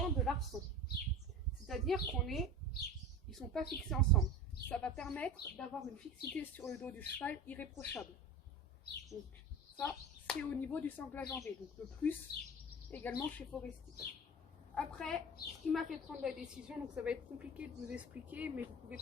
de l'arçon. C'est-à-dire ils ne sont pas fixés ensemble. Ça va permettre d'avoir une fixité sur le dos du cheval irréprochable. Donc ça, c'est au niveau du sanglage en V. Donc le plus également chez Forestier. Après, ce qui m'a fait prendre la décision, donc ça va être compliqué de vous expliquer, mais vous pouvez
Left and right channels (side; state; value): both; normal; correlation 0.33